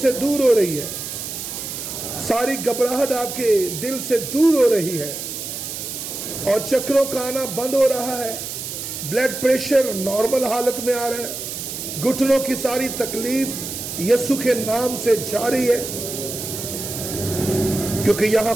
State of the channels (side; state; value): right; noise; hiss, 7 dB below the sound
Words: दूर हो रही है, सारी घबराहट आपके दिल से दूर हो रही है और चक्रों का आना बंद हो रहा है। ब्लड प्रेशर नॉर्मल हालत में आ रहा है। घुटनों की सारी तकलीफ यीशु के नाम से जा रही है, क्योंकि यहां